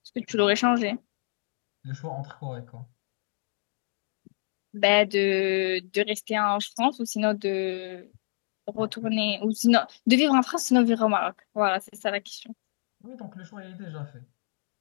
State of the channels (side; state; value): right; silent; digital silence